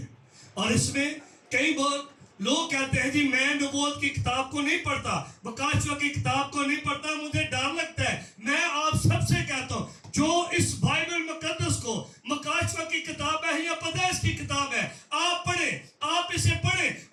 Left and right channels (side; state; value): both; identical; correlation 1.00